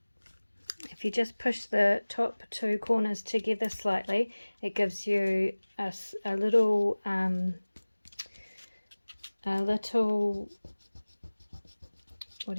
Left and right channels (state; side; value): inverted; both; correlation -1.00